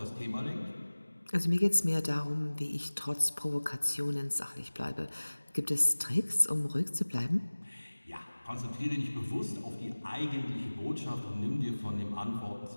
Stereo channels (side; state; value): both; inverted; correlation -1.00